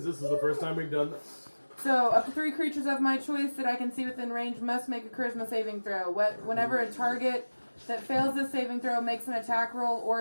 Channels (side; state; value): both; inverted; correlation -1.00